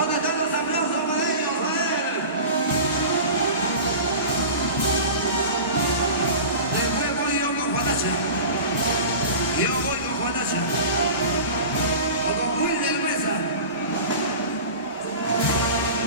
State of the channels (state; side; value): inverted; both; correlation -0.34